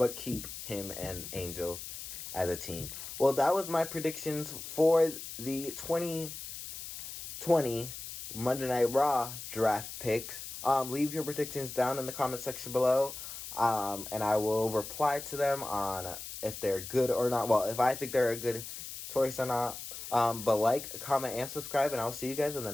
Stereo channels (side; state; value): left; noise; hiss, 9 dB below the sound